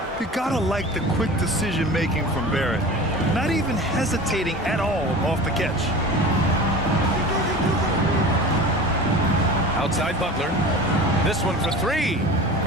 You gotta like the quick decision-making from Barrett. Not even hesitating at all off the catch. Outside Butler. This one for 3.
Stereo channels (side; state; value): both; normal; correlation 0.36